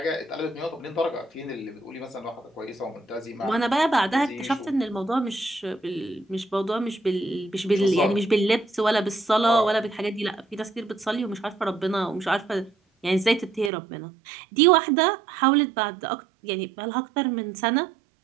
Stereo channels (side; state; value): left; drops out; at 13.7 s